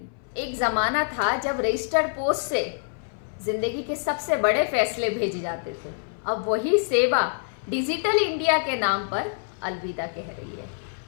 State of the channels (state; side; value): silent; right; 58 dB below the other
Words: एक जमाना था जब रजिस्टर्ड पोस्ट से जिंदगी के सबसे बड़े फैसले भेजे जाते थे। अब वही सेवा डिजिटल इंडिया के नाम पर अलविदा कह रही है।